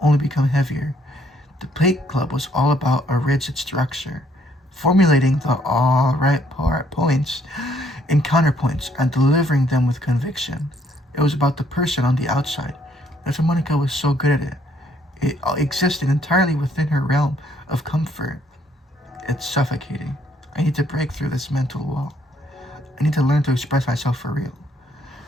only become heavier. The plate club was all about a rigid structure, formulating the all right points and counterpoints and delivering them with conviction. It was about the person on the outside. That's why Monica was so good at it. It existed entirely within her realm of comfort. It's suffocating. I need to break through this mental wall. I need to learn to express myself for real.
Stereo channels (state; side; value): normal; both; correlation 0.68